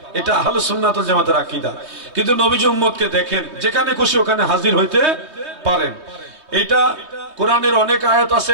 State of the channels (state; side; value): late; left; 3.2 ms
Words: এটা আহলে সুন্নাত ওয়াল জামাতের আকীদা। কিন্তু নবীজি উম্মতকে দেখেন যেখানে খুশি ওখানে হাজির হইতে পারেন। এটা কোরআনের অনেক আয়াত আছে,